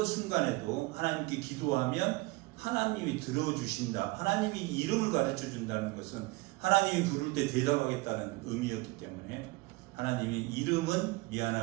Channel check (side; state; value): left; quieter; 23.5 dB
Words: 순간에도 하나님께 기도하면 하나님이 들어주신다. 하나님이 이름을 가르쳐 준다는 것은 하나님이 부를 때 대답하겠다는 의미였기 때문에 하나님이 이름은